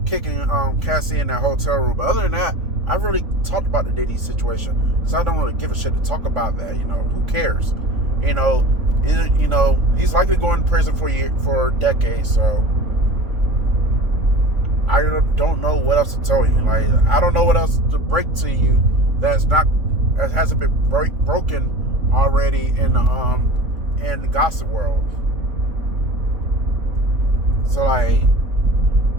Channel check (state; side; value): late; left; 3.9 ms